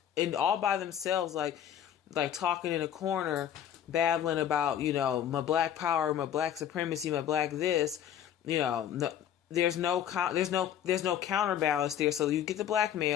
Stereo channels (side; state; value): right; quieter; 9.9 dB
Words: all by themselves, like talking in a corner, babbling about, you know, my black power, my black supremacy, my black this, you know. There's no counterbalance there. So you get the black